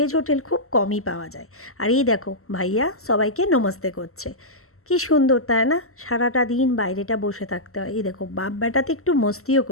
হোটেল খুব কমই পাওয়া যায়। আর এই দেখো ভাইয়া সবাইকে নমস্তে করছে। কি সুন্দর তাই না? সারাটা দিন বাইরেটা বসে থাকতে হয়। এই দেখো বাপ বেটাতে একটু মস্তিও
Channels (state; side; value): late; right; 0.63 ms